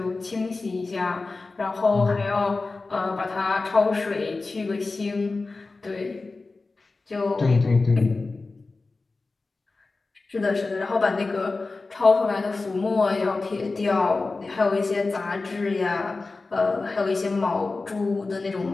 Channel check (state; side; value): quieter; right; 3.7 dB